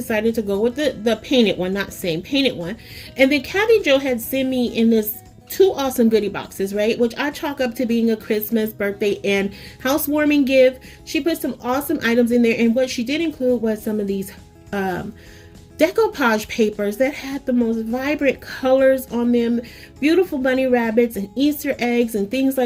to go with the painted one, not same, painted one. And then Kathy Joe had sent me in this two awesome goodie boxes, right, which I chalk up to being a Christmas, birthday, and housewarming gift. She put some awesome items in there, and what she did include was some of these decoupage papers that had the most vibrant colors on them, beautiful bunny rabbits and Easter eggs and things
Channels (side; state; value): both; identical; correlation 1.00